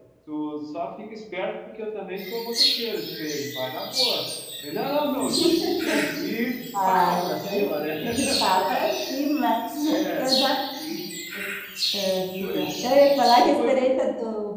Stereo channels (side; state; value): both; identical; correlation 1.00